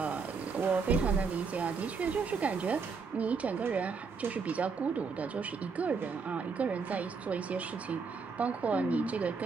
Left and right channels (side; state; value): left; quieter; 5.1 dB